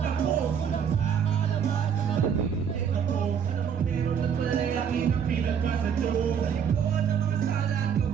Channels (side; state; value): left; quieter; 7.7 dB